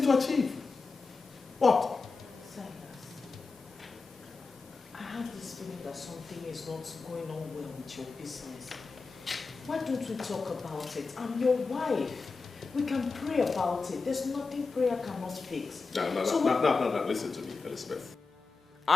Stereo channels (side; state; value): right; quieter; 4.3 dB